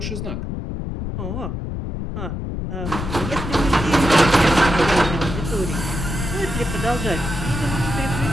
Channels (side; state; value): left; noise; rumble, 5 dB below the sound